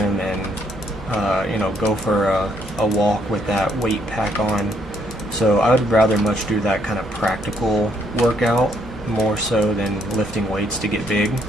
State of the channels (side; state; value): both; normal; correlation 0.70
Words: and, go for a walk with that weight pack on. So I would rather much do that kind of practical workout more so than lifting weights to get big.